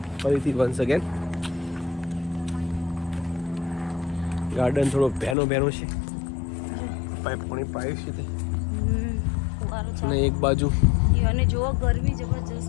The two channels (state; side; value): drops out; right; at 5.4 s